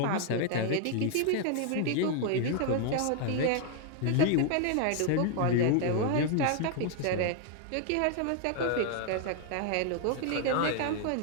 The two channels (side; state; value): both; different; correlation 0.00